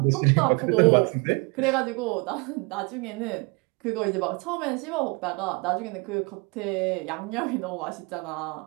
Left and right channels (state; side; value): quieter; left; 29.4 dB